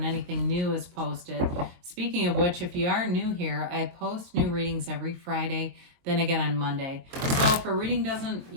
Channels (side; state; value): left; late; 23 ms